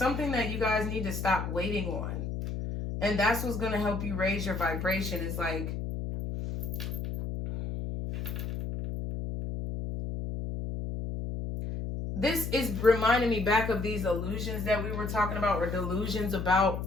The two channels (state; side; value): noise; left; hum, 4 dB below the sound